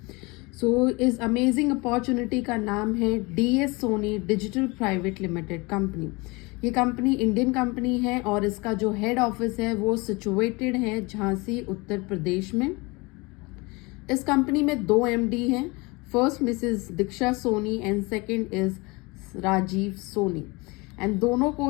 इस अमेजिंग अपॉर्चुनिटी का नाम है DS Soni digital private limited company. ये कंपनी इंडियन कंपनी है और इसका जो हेड ऑफिस है वो सिचुएटेड है झांसी, उत्तर प्रदेश में। इस कंपनी में 2 MD हैं। First Mrs Diksha Soni and second is Rajiv Soni. And दोनों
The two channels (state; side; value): quieter; right; 25.8 dB